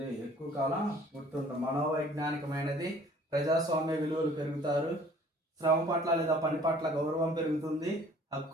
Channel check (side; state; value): both; normal; correlation 0.53